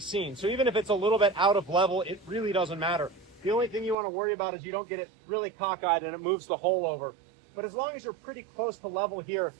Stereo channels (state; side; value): drops out; left; at 4.0 s